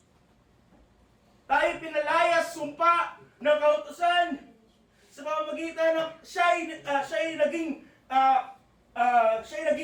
Tayo pinalayas, sumpa ng kautusan sa pamamagitan ng siya'y naging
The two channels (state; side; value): identical; both; correlation 1.00